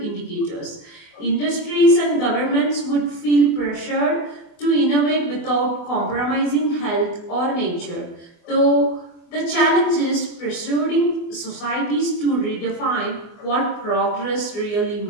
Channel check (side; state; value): right; late; 24 ms